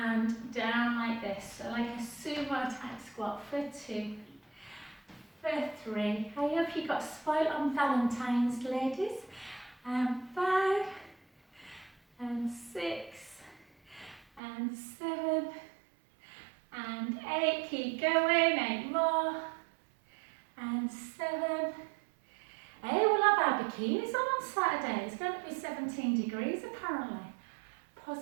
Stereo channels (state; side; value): drops out; left; at 14.4 s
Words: down like this. So like a sumo type squat for 2, for 3. I hope you got spoiled on Valentine's, ladies. And 5, and 6, and 7, and 8. Keep going. 8 more. And 7. Hey, we'll have our bikinis on Saturday. It's going to be 17 degrees apparently.